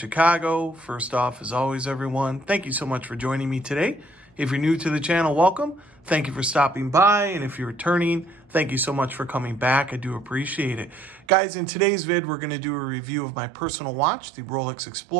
First off, as always, everyone, thank you so much for joining me today. If you're new to the channel, welcome. Thank you for stopping by. And if you're returning, thank you so much for coming back. I do appreciate it. Guys, in today's vid, we're going to do a review of my personal watch, the Rolex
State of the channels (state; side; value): drops out; left; at 11.2 s